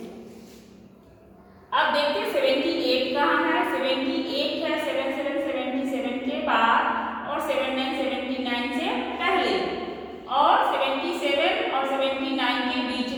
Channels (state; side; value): identical; both; correlation 1.00